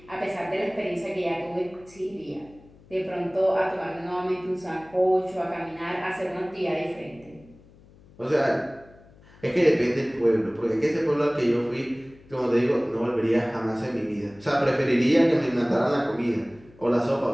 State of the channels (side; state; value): left; noise; hum, 25 dB below the sound